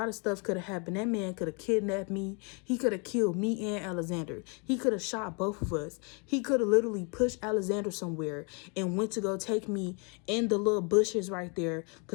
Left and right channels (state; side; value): quieter; right; 34.9 dB